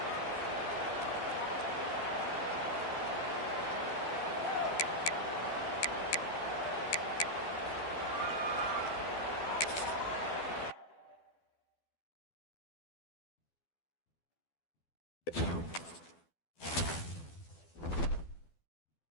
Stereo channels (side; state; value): right; late; 12 ms